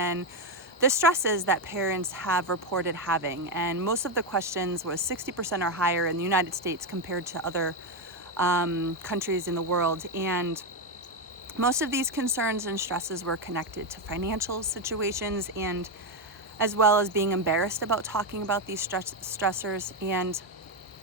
the stresses that parents have reported having. And most of the questions was 60% or higher in the United States compared to other countries in the world. And most of these concerns and stresses were connected to financial situations and as well as being embarrassed about talking about these stressors. And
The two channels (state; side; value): normal; both; correlation 0.08